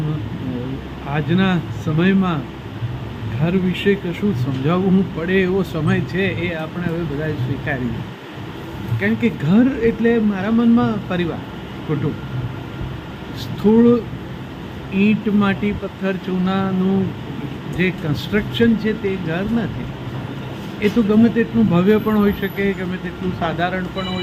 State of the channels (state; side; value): identical; both; correlation 1.00